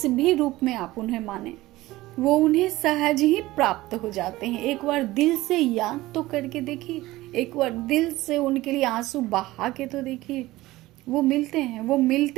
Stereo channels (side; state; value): left; quieter; 17.9 dB